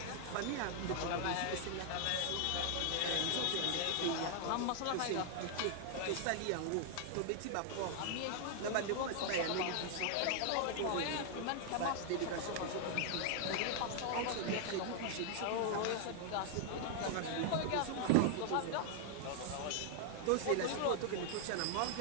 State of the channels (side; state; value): both; different; correlation 0.00